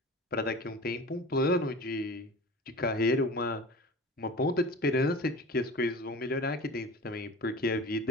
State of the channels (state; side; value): normal; both; correlation 0.36